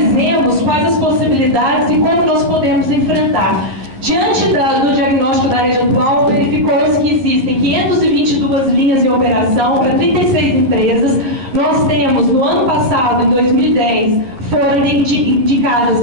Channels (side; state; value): left; late; 11 ms